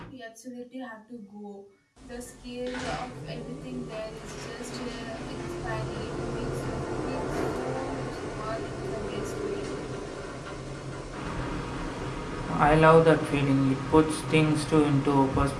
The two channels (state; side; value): identical; both; correlation 1.00